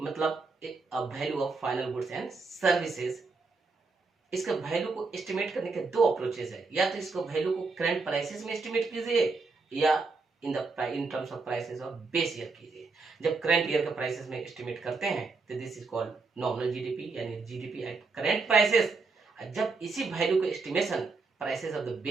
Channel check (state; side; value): quieter; left; 4.1 dB